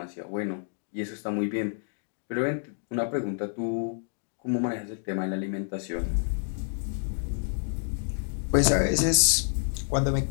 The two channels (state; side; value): silent; right; digital silence